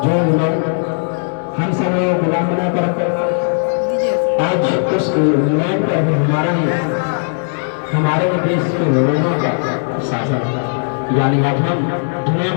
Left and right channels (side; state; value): right; silent; digital silence